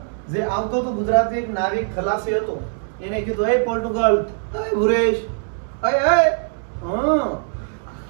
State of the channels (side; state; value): left; silent; digital silence